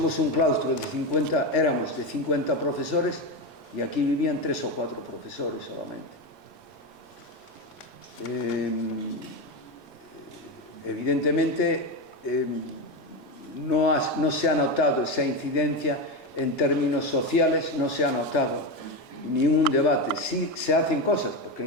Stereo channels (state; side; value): normal; both; correlation 0.14